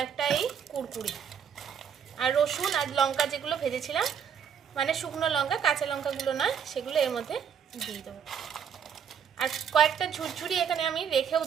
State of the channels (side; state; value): left; quieter; 7.6 dB